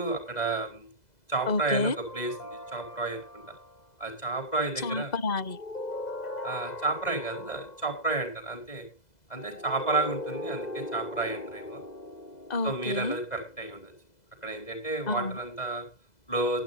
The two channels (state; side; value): late; right; 2.0 ms